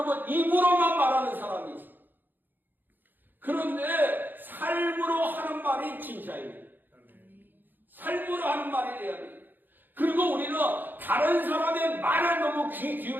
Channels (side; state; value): left; late; 0.090 ms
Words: 입으로만 말하는 사람이 있어요. 그런데 삶으로 하는 말이 진짜입니다. 삶으로 하는 말이 돼야 돼요. 그리고 우리는 다른 사람의 말에 너무 귀